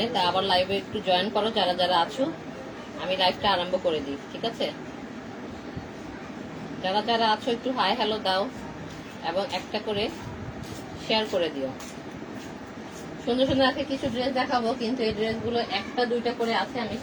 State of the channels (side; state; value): both; identical; correlation 1.00